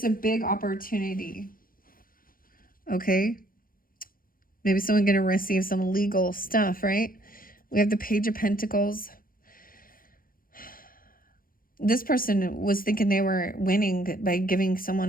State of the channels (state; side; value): late; right; 0.41 ms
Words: a big opportunity. Okay. Maybe someone going to receive some legal stuff, right? We have the Page of Pentacles. This person was thinking they were winning by giving